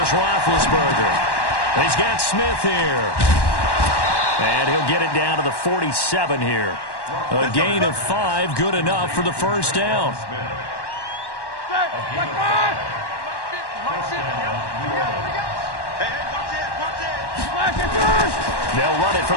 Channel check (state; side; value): late; right; 1.1 ms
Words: Roethlisberger. He's got Smith here. And he'll get it down to the 47 here. A gain of 5, good enough for the first down. They'll run it for